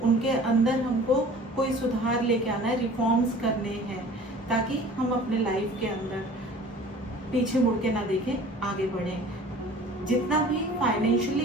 उनके अंदर हमको कोई सुधार लेके आना है, रिफॉर्म्स करने हैं ताकि हम अपने लाइफ के अंदर पीछे मुड़ के ना देखें, आगे बढ़ें। जितना भी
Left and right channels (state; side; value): normal; both; correlation 0.45